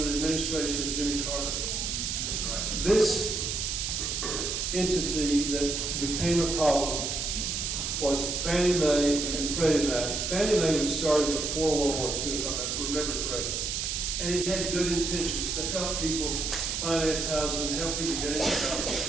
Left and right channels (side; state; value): right; noise; hiss, 1 dB below the sound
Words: the administration of Jimmy Carter. This entity that became a problem was Fannie Mae and Freddie Mac. Fannie Mae was started before World War II, if I remember correctly. And it had good intentions to help people finance housing and help people get into